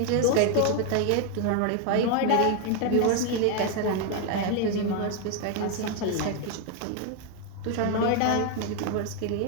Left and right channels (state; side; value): different; both; correlation 0.01